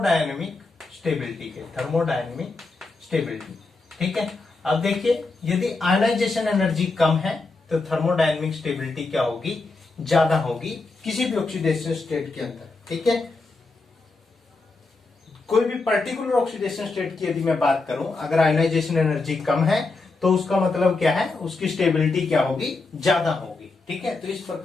स्टेबिलिटी के। थर्मोडायनेमिक स्टेबिलिटी, ठीक है। अब देखिए यदि आयनाइजेशन एनर्जी कम है तो थर्मोडायनेमिक स्टेबिलिटी क्या होगी? ज्यादा होगी किसी भी ऑक्सीडेशन स्टेट के अंदर। ठीक है, कोई भी पर्टिकुलर ऑक्सीडेशन स्टेट की यदि मैं बात करूं, अगर आयनाइजेशन एनर्जी कम है तो उसका मतलब क्या है? उसकी स्टेबिलिटी क्या होगी? ज्यादा होगी। ठीक है, तो इस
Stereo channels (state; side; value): quieter; right; 3.6 dB